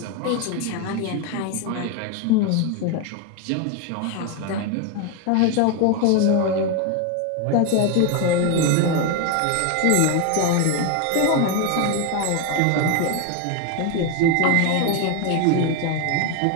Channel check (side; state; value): both; different; correlation 0.01